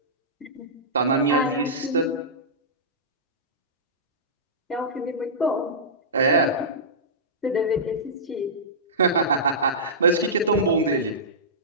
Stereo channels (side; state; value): both; normal; correlation -0.17